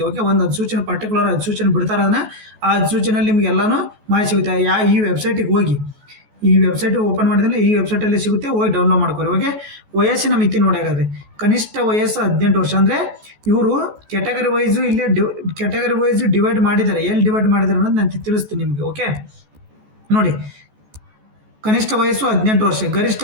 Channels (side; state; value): left; late; 14 ms